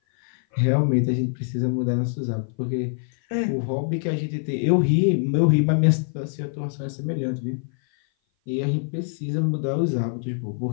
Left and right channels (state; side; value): silent; right; 57 dB below the other